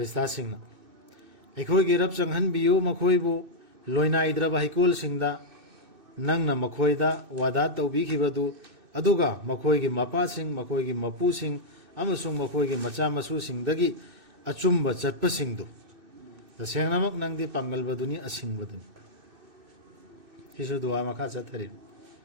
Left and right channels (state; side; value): late; left; 2.6 ms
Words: सिंह ना अखोई की रब चंगहन बियो मखोइबु लोइना इद्रबा हिकोल सिंह दा नंग ना मखोइदा वादा तौबीखिबदु अदुगा मखोइगी मपा सिंह मखोइगी मपू सिंह अमसुंग मखोइगी मचा मसु सिंह दगी अचुम्ब चटप सिंह दु तसेंगनमक नंगदी पांगलबदुनी असिंगबदुनी हिसु दुआ मखा चथरि